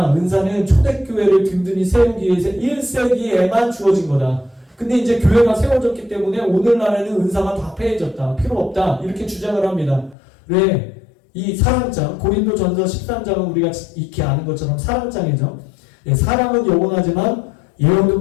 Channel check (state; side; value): drops out; right; at 10.2 s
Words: 은사는 초대교회를 든든히 세우기 위해서 1세기에만 주어진 거다. 근데 이제 교회가 세워졌기 때문에 오늘날에는 은사가 다 폐해졌다. 필요 없다. 이렇게 주장을 합니다. 왜? 이 사랑장, 고린도전서 13장은 우리가 익히 아는 것처럼 사랑장이죠. 사랑은 영원하지만 예언도